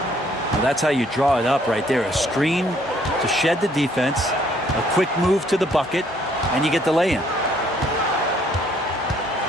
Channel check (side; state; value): both; normal; correlation 0.64